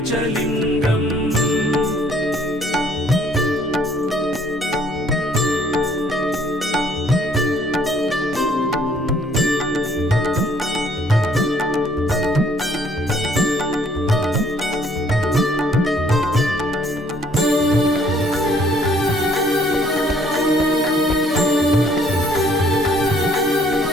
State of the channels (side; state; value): both; normal; correlation 0.62